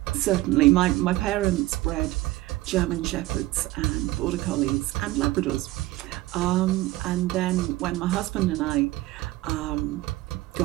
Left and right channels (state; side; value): quieter; left; 17.8 dB